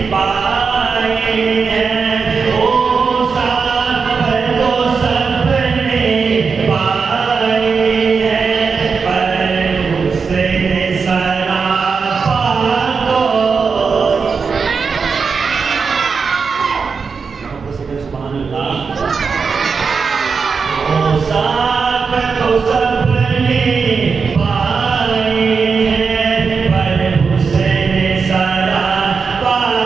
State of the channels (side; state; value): left; quieter; 5.3 dB